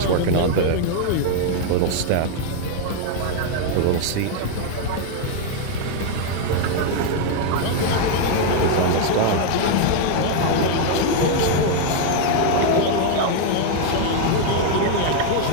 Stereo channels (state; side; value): different; both; correlation 0.00